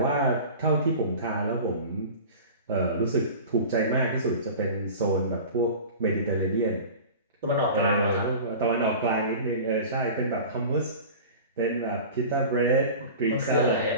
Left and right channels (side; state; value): both; inverted; correlation -0.36